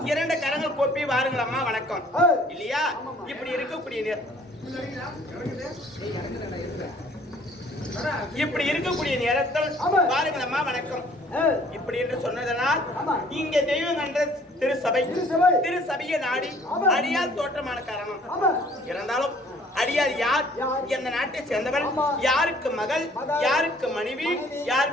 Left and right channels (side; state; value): both; normal; correlation 0.57